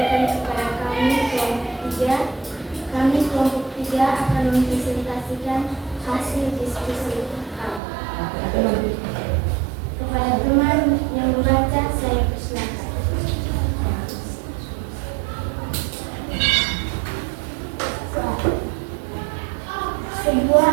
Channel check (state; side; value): drops out; left; at 7.8 s